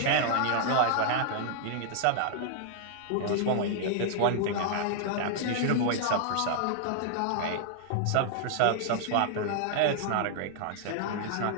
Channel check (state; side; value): different; both; correlation 0.00